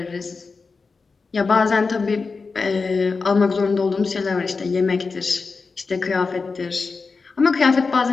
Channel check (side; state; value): right; quieter; 4.5 dB